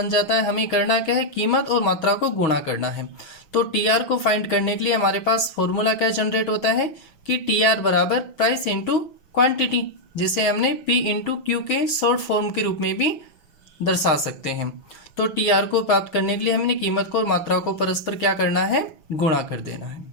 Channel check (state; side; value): late; right; 6.3 ms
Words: जाता है। हमें करना क्या है, कीमत और मात्रा को गुणा करना है। तो टीआर को फाइंड करने के लिए हमारे पास फॉर्मूला क्या जनरेट होता है कि टीआर बराबर प्राइस इंटू क्वांटिटी, जिसे हमने पी इंटू क्यू के शॉर्ट फॉर्म के रूप में भी दर्शा सकते हैं। तो टीआर को प्राप्त करने के लिए हमने कीमत को और मात्रा को परस्पर क्या करना है, गुणा कर देना है।